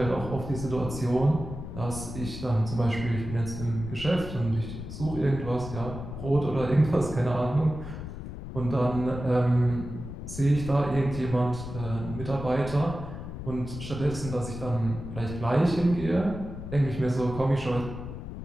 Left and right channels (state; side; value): noise; left; rumble, 9 dB below the sound